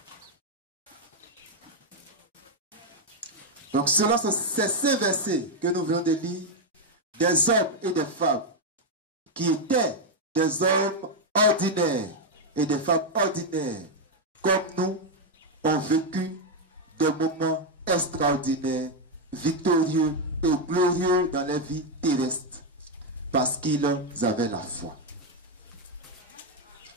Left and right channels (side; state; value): both; normal; correlation 0.02